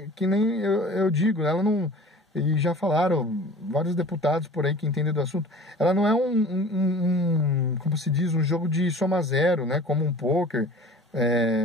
que nem eu digo, ela não... E já falaram vários deputados por aí que entendem do assunto. Ela não é como se diz, um jogo de soma zero, né? Como um poker,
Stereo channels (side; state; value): both; normal; correlation 0.43